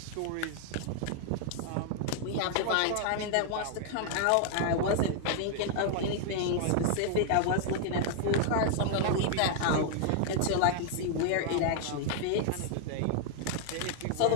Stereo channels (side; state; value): both; different; correlation 0.00